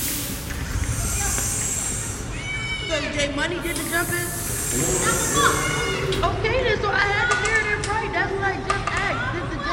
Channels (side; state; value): both; identical; correlation 1.00